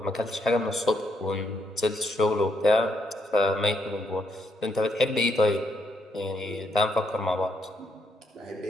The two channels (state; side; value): normal; both; correlation 0.75